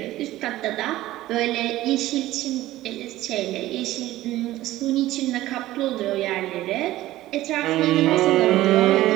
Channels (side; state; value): left; quieter; 15.8 dB